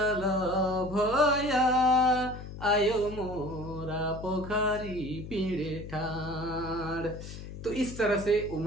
भैया आयो मोरा पोखरी पीड़े ठाड़। तो इस तरह से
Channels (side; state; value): left; noise; hum, 11 dB below the sound